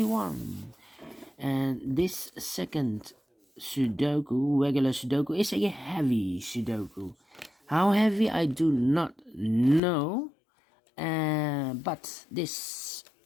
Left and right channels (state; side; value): drops out; right; at 9.8 s